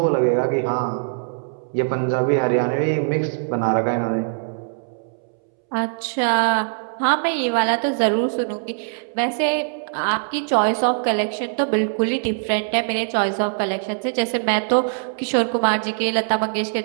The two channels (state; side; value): silent; left; 64 dB below the other